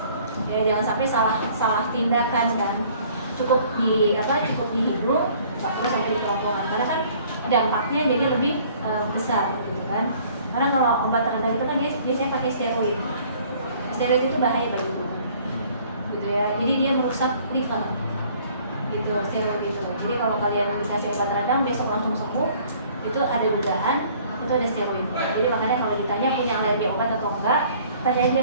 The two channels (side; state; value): both; inverted; correlation -0.56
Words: Ya, jangan sampai salah tindakan kan. Cukup di hidung, nggak perlu sampai di kerongkongan. Karena kan dampaknya jadi lebih besar gitu kan. Karena kalau obat terendah itu kan dia biasanya pakai steroid. Steroid itu bahaya bagi tubuh. Gitu ya. Jadi dia merusak liver. Gitu, steroid itu. Jadi kalau kalian dikasih obat radang besok langsung sembuh, itu ada dugaan itu ada steroid. Jadi makanya kalau ditanya punya alergi obat atau enggak, tanya aja